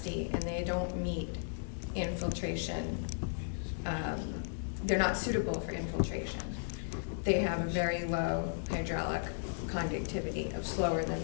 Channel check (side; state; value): right; silent; digital silence